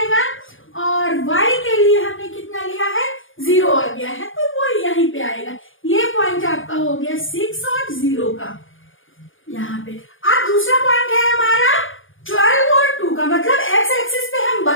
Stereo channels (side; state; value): right; late; 0.58 ms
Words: और y के लिए हमने कितना लिया है? 0 आ गया है, तो वो यहीं पे आएगा। ये पॉइंट आपका हो गया 6 और 0 का यहाँ पे। अब दूसरा पॉइंट है हमारा 12 और 2 का, मतलब x एक्सिस पे हम